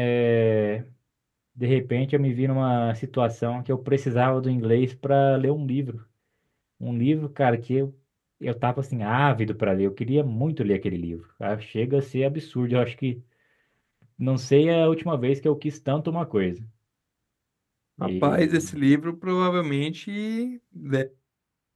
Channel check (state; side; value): identical; both; correlation 1.00